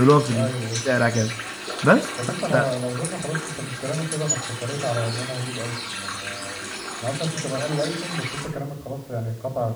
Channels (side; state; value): both; identical; correlation 1.00